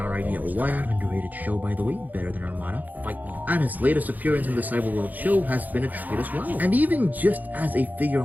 Idea 1, underrated show by the way, better than Armada, fight me. And his latest appearance in the Cyberworld show has been a treat as well. And even just as a figure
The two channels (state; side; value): late; left; 0.082 ms